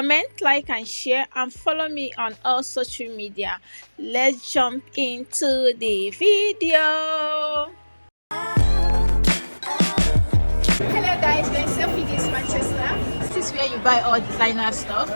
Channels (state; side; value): inverted; both; correlation -1.00